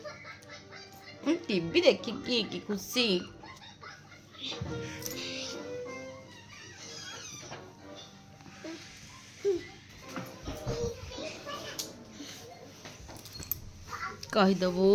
टीवी देखिकी कि खुशी कहीदेबू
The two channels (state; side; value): identical; both; correlation 1.00